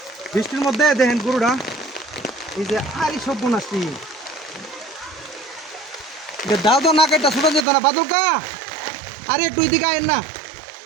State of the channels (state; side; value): drops out; left; at 7.7 s